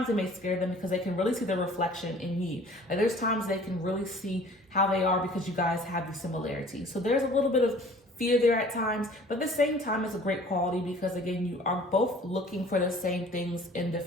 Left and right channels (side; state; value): both; normal; correlation 0.50